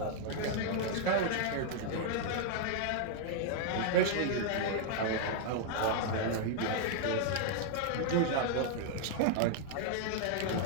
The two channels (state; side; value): different; both; correlation -0.01